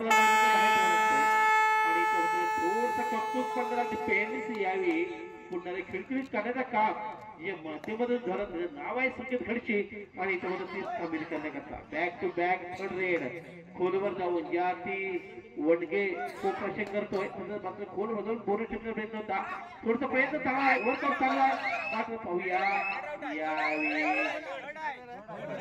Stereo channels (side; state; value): both; identical; correlation 1.00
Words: आणि थोडस कौतुक करणारा डिफेन्स यावेळी पुन्हा खिळखिळीत करण्याचं काम जे माध्यमधून धरत नाव आहे संकेत खडशी आणि त्यामध्ये ती सामील करण्याकरता back to back third raid खोलवर जाऊन या ती वडगे खूप प्रश्न करतोय मात्र खोल मधून बोनस ठेवण्याचा प्रयत्न होता थोडसा प्रयत्न चांगला आहे वर चांगला मात्र पाहूया